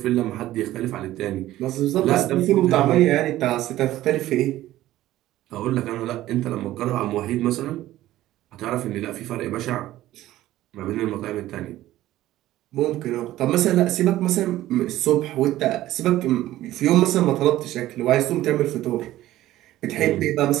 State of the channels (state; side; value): quieter; left; 14.9 dB